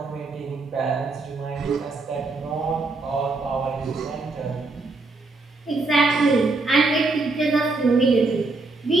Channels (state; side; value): quieter; left; 3.5 dB